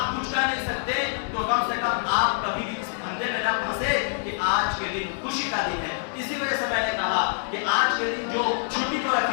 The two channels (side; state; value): right; silent; 59 dB below the other